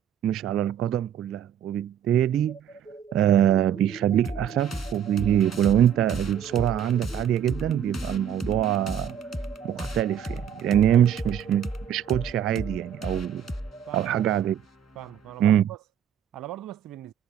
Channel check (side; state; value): left; quieter; 9.4 dB